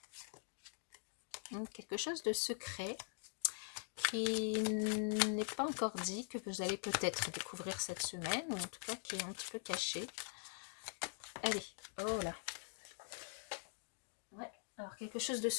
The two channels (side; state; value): right; silent; digital silence